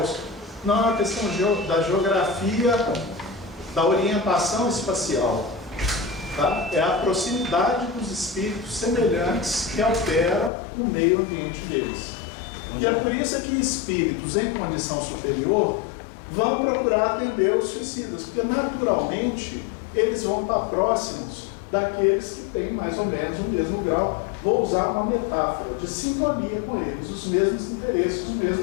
Não, é uma questão da geografia, da orientação espacial. Tá? É a proximidade dos espíritos semelhantes que altera o meio ambiente deles. E é por isso que espíritos em condição superior vão procurar atender os suicidas, porque naturalmente eles vão estar próximos daqueles que têm mais ou menos o mesmo grau. Vou usar uma metáfora de sintonia com eles, os mesmos interesses, os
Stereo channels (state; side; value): drops out; right; at 10.5 s